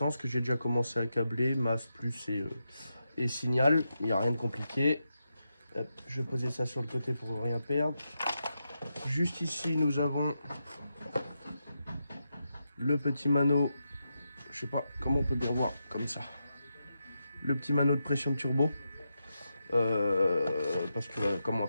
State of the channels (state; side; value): inverted; both; correlation -0.86